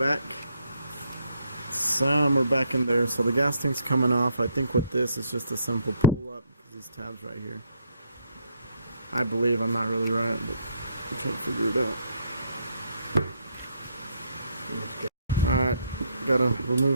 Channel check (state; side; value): inverted; both; correlation -0.71